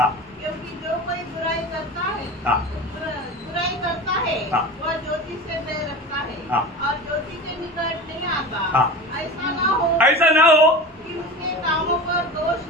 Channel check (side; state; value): both; normal; correlation 0.31